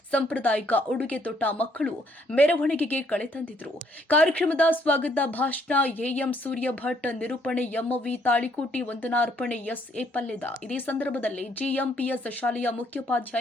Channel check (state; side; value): normal; both; correlation 0.68